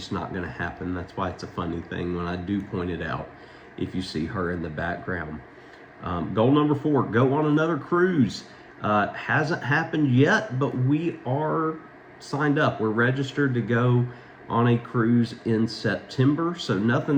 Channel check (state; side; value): identical; both; correlation 1.00